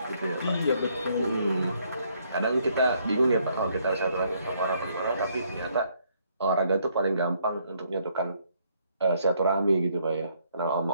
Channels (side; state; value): both; inverted; correlation -0.69